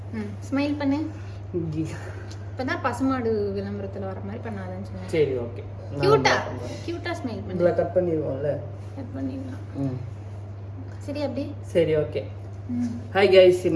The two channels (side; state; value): both; identical; correlation 1.00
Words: ஸ்மைல் பண்ணு. இப்பதான் பசுமாடு விளம்பரத்துல வர மாதிரி பண்ணாதன்னு சொன்னேன். சரி ஓகே. கியூட்டா ஸ்மைல் பண்ணு. இதெல்லாம் கட் பண்ணிடுவோம்ல. கட் பண்ணிடலாம். சரி அப்படி. சரி ஓகே. ஹாய் கைஸ்,